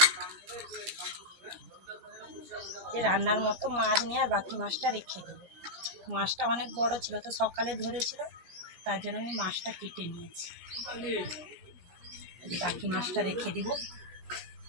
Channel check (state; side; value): late; left; 17 ms